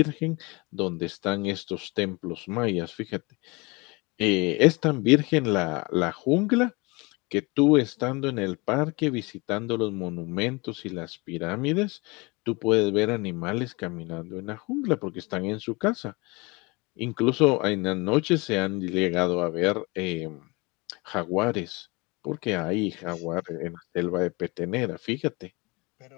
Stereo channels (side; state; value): right; quieter; 26.3 dB